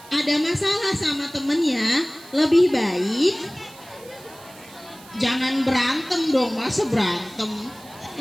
ada masalah sama temennya, lebih baik jangan berantem dong, masa berantem.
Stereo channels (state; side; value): noise; right; hiss, 21 dB below the sound